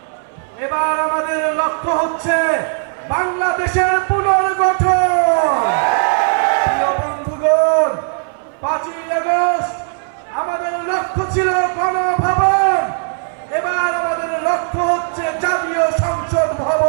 এবার আমাদের লক্ষ্য হচ্ছে বাংলাদেশের পুনর্গঠন। প্রিয় বন্ধুগণ, 5ই আগস্ট আমাদের লক্ষ্য ছিল গণভবন, এবার আমাদের লক্ষ্য হচ্ছে জাতীয় সংসদ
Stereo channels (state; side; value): silent; left; 62 dB below the other